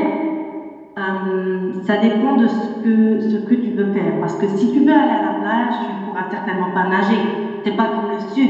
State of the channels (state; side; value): identical; both; correlation 1.00